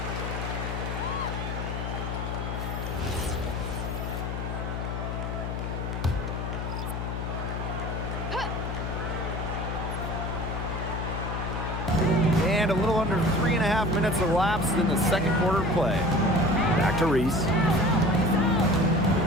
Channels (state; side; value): noise; left; hum, 4 dB below the sound